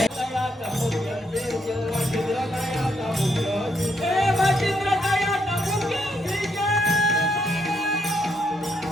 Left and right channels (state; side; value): normal; both; correlation 0.76